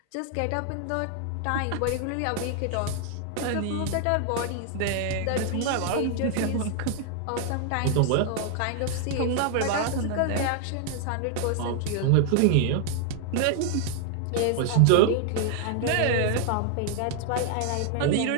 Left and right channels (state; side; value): different; both; correlation 0.00